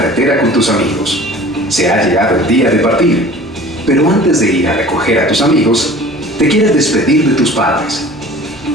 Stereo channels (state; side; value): normal; both; correlation 0.44